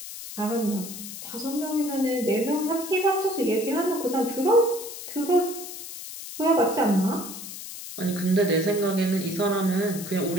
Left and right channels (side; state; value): left; noise; hiss, 10 dB below the sound